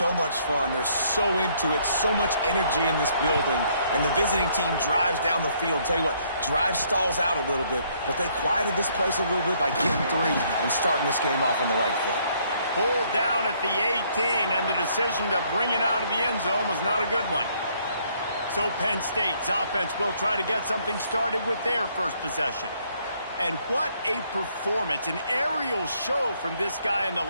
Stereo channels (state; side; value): inverted; both; correlation -0.67